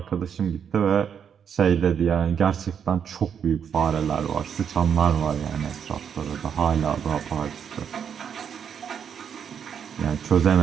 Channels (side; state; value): left; quieter; 7.8 dB